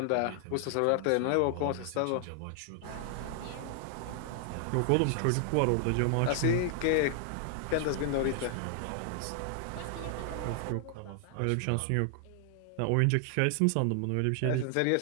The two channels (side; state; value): both; different; correlation 0.00